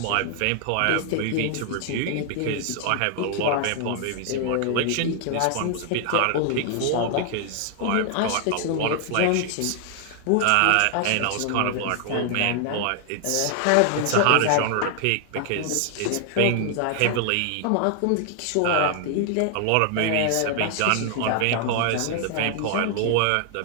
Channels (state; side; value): different; both; correlation 0.00